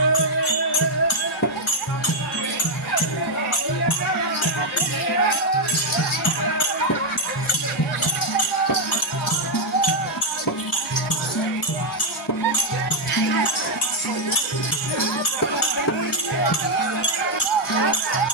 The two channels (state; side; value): normal; both; correlation 0.00